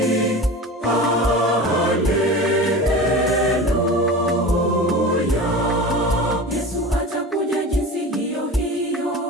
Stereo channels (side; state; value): both; normal; correlation 0.32